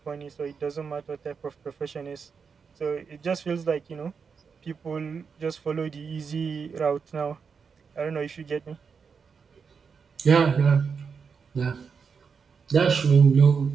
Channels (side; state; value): left; quieter; 5.9 dB